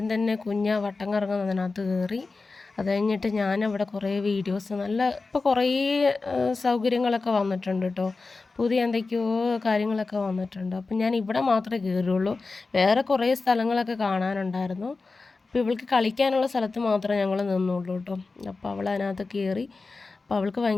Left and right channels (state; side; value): quieter; right; 3.9 dB